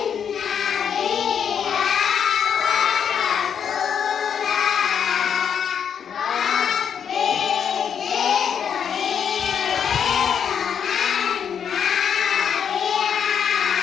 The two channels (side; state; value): right; quieter; 7.8 dB